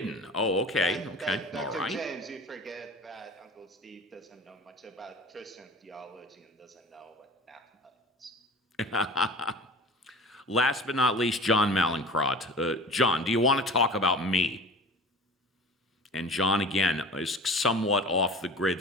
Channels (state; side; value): normal; both; correlation 0.38